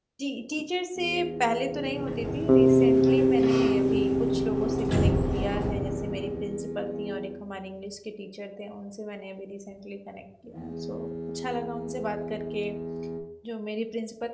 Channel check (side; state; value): both; identical; correlation 1.00